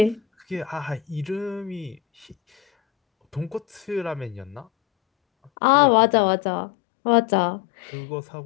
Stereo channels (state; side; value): drops out; right; at 5.5 s